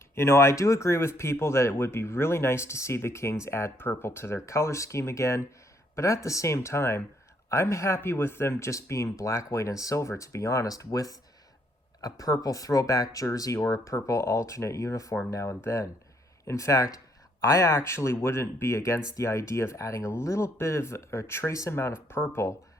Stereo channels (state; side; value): normal; both; correlation 0.70